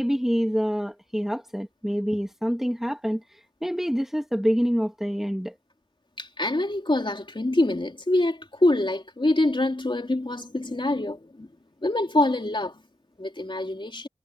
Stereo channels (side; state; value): both; normal; correlation 0.87